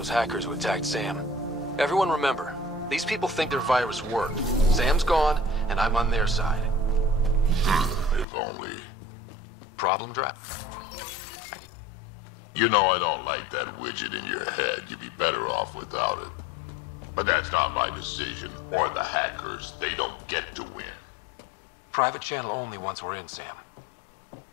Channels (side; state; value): right; drops out; at 8.2 s